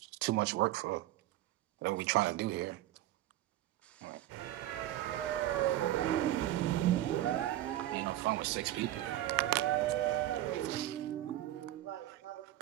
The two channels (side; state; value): left; quieter; 14.1 dB